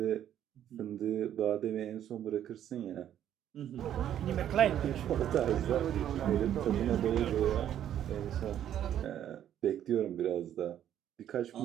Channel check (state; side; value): quieter; left; 10.7 dB